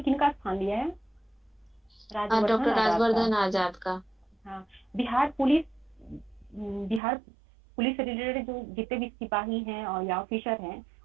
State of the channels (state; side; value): drops out; left; at 7.0 s